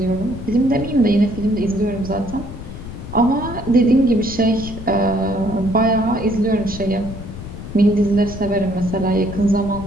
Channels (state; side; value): noise; left; rumble, 11 dB below the sound